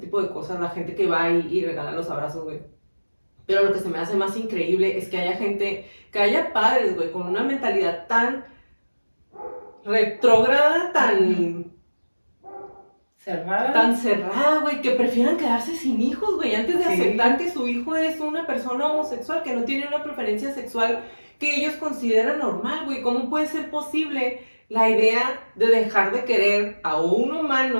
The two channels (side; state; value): both; inverted; correlation -1.00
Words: de cosas, la gente que va y regala los abrazos, güey. Pero lo que se me hace más increíble es que haya padres, güey, con una mentalidad tan retrógrada, tan cerrada, güey, que prefieran quedarse sin hijos, güey, antes de aceptar que su hijo es una persona homosexual, que no tiene una preferencia sexual que ellos consideran normal, güey. ¿Cómo puede ser posible la idea de dejar de querer a un